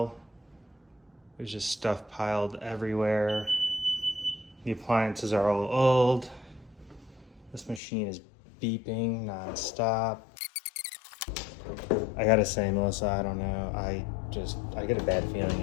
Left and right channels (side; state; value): right; drops out; at 7.8 s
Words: There's just stuff piled everywhere. The appliances are all old. This machine is beeping nonstop. I gotta say, Melissa, I don't know. I get a bad feeling